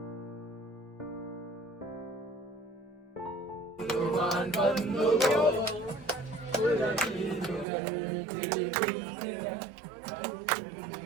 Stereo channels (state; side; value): drops out; left; at 7.7 s